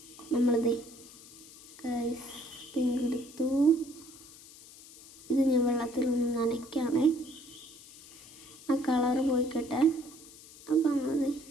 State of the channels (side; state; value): left; noise; hiss, 20 dB below the sound